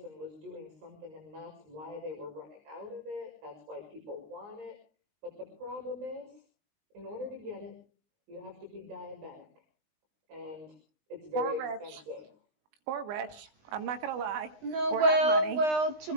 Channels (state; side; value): late; left; 20 ms